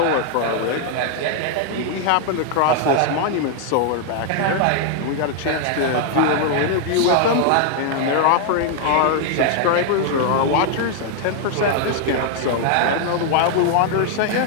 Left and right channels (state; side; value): different; both; correlation 0.00